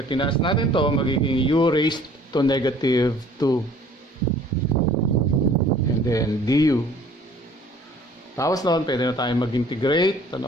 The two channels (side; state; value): both; normal; correlation 0.53